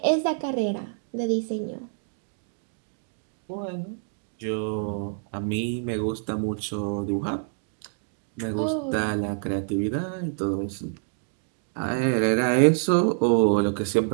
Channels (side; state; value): left; silent; digital silence